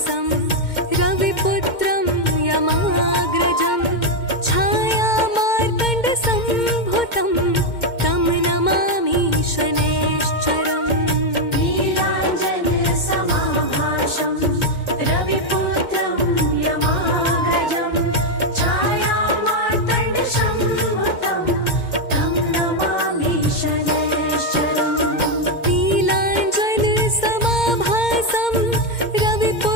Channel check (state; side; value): late; right; 2.1 ms